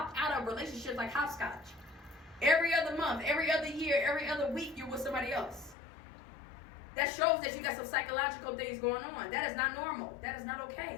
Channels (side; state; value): right; drops out; at 5.8 s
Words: out of relationships like hopscotch. Every other month, every other year, every other week, you're with somebody else. That shows that you got some psychological things going on. That is not normal. That is not